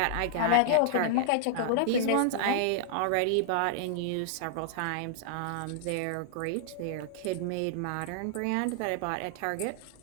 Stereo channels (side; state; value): both; different; correlation -0.01